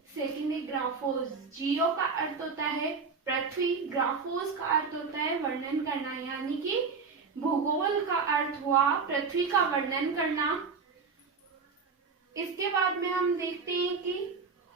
सेकंड है ग्राफोस। जियो का अर्थ होता है पृथ्वी, ग्राफोस का अर्थ होता है वर्णन करना, यानी कि भूगोल का अर्थ हुआ पृथ्वी का वर्णन करना। इसके बाद में हम देखते हैं कि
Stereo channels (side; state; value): left; quieter; 5.1 dB